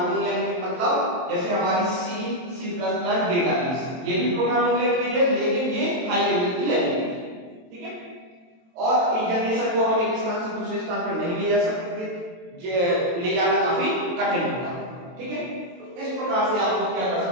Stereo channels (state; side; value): late; left; 23 ms